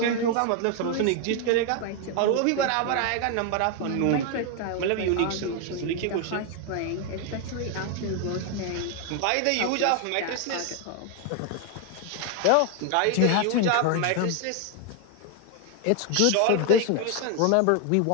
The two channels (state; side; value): different; both; correlation 0.01